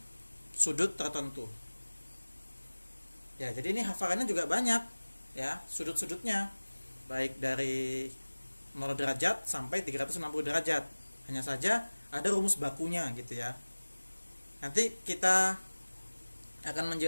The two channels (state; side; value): inverted; both; correlation -1.00